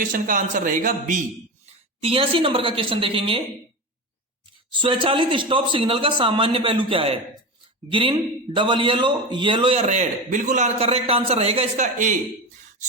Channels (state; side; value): normal; both; correlation 0.23